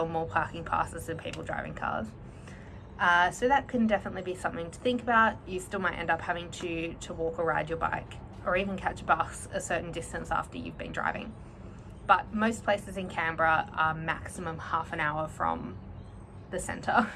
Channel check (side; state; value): both; identical; correlation 1.00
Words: more parking passes than people driving cars. So that can definitely be something to think about. You still might end up having to walk or ride your bike, or even catch a bus a certain distance after you've been driving. But most places in Canberra are maximum half an hour from the centre.